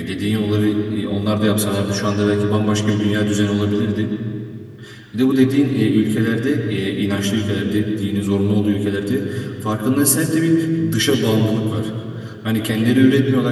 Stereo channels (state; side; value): identical; both; correlation 1.00